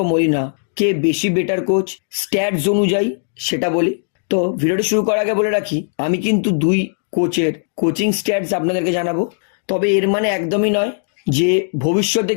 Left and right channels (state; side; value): silent; right; digital silence